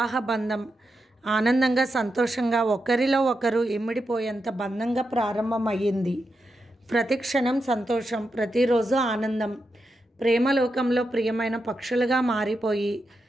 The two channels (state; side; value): normal; both; correlation 0.87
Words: బంధం ఆనందంగా, సంతోషంగా, ఒకరిలో ఒకరు ఇమిడిపోయేంత బంధంగా ప్రారంభమయ్యింది. ప్రతి క్షణం సంతోషం, ప్రతిరోజు ఆనందం. ప్రేమలోకంలో ప్రియమైన పక్షులుగా మారిపోయి